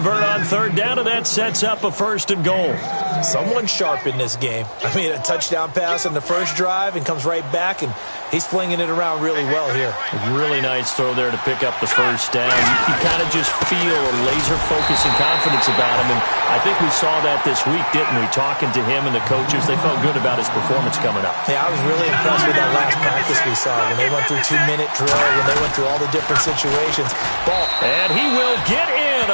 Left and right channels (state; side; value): inverted; both; correlation -1.00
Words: on third down, and that sets up a 1st and goal. Someone sharp in this game. I mean, a touchdown pass on the first drive and comes right back, and he's flinging it around really well here. Really nice throw there to pick up the first down. You kind of just feel a laser focus and confidence about him, and I think we saw that this week, didn't we? Talking to him and the coaches, they felt good about his performance coming up. Yeah, I was really impressed with that last practice we saw when they went through 2-minute drill, when they went through all the different situations. Ball. And he will get in